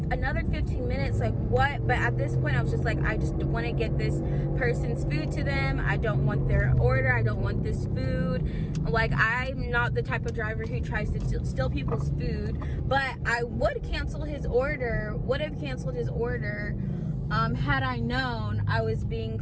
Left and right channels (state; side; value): identical; both; correlation 1.00